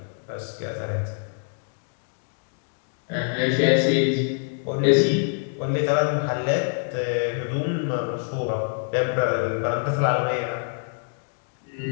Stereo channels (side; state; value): right; silent; 62 dB below the other